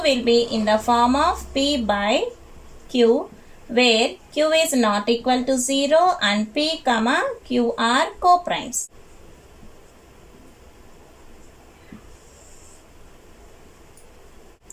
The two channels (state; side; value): identical; both; correlation 1.00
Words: will be in the form of p by q, where q is not equal to 0 and p comma q are co-primes.